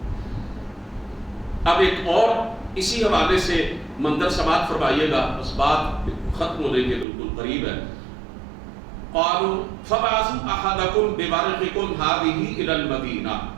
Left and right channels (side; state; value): left; drops out; at 7.1 s